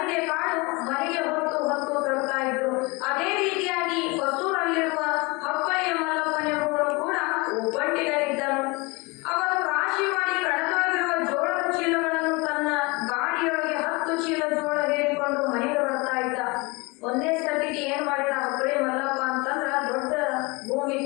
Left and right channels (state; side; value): quieter; right; 26.3 dB